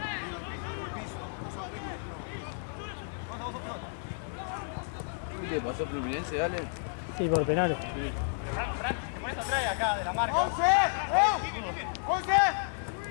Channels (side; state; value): right; silent; 57 dB below the other